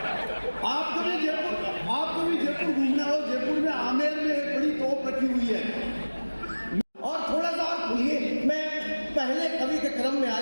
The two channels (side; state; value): both; inverted; correlation -1.00